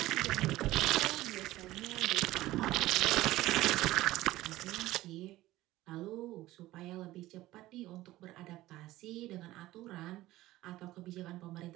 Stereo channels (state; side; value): quieter; left; 16.6 dB